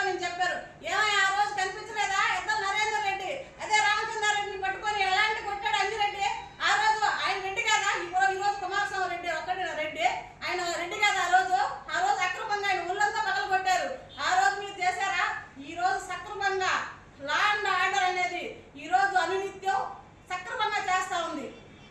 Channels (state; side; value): identical; both; correlation 1.00